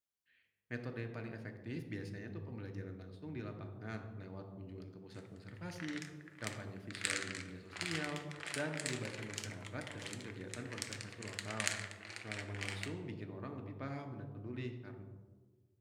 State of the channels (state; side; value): identical; both; correlation 1.00